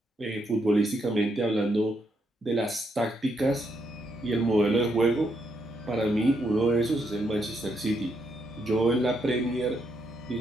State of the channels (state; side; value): normal; both; correlation 0.77